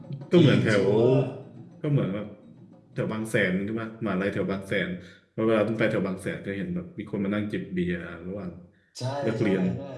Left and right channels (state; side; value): identical; both; correlation 1.00